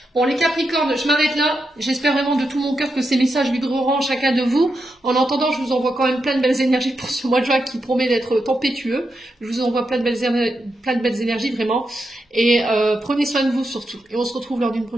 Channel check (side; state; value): both; normal; correlation 0.85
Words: Bon, les Capricornes, je m'arrête là. J'espère vraiment de tout mon cœur que ces messages vibreront en chacun de vous. En attendant, je vous envoie quand même plein de belles énergies pour ce mois de juin qui promet d'être tempétueux. Je vous envoie plein de belles énergies, vraiment. Et prenez soin de vous surtout. Et on se retrouve lors d'une